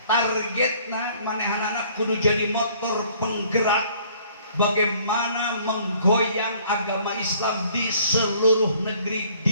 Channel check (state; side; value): inverted; both; correlation -0.58